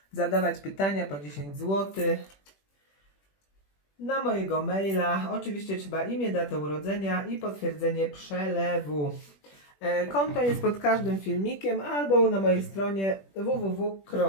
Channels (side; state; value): right; late; 21 ms